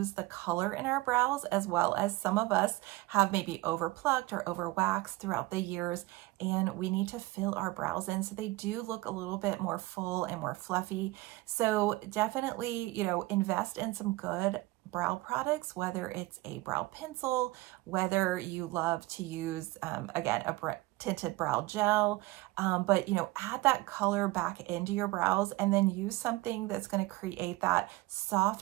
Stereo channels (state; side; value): quieter; left; 20.0 dB